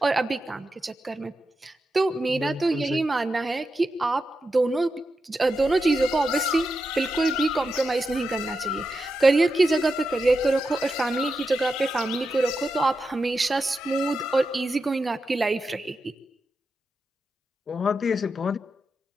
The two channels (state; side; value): normal; both; correlation 0.88